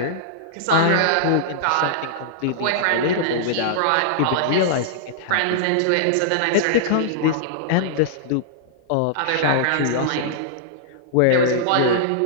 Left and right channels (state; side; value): different; both; correlation -0.02